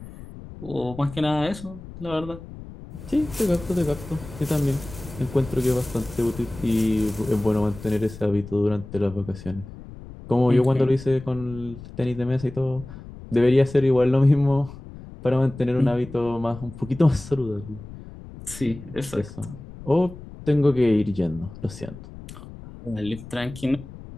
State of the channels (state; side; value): noise; left; rumble, 15 dB below the sound